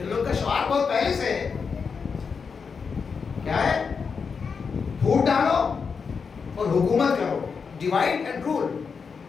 لوگ کا شعار بہت پہلے سے ہے. کیا ہے؟ پھوٹ ڈالو اور حکومت کرو. ڈیوائڈ اینڈ رول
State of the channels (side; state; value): right; quieter; 5.6 dB